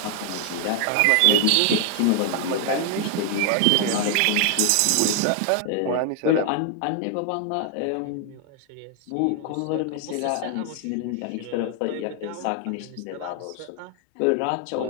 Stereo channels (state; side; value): different; both; correlation 0.00